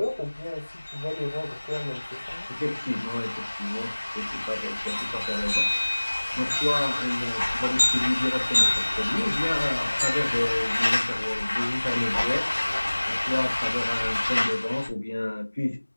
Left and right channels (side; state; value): both; inverted; correlation -1.00